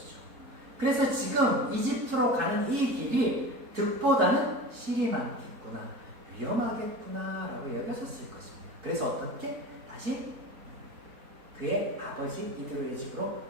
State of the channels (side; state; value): left; late; 4.6 ms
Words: 그래서 지금 이집트로 가는 이 길이 득보다는 실이 많겠구나, 위험하겠구나라고 여겨졌을 것입니다. 그래서 어떻게? 다시 그의 아버지 이드로의 집으로